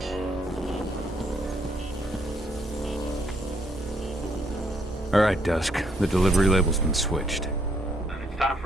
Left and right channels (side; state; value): both; normal; correlation 0.71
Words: All right, Dusk. The delivery label's been switched. Then it's time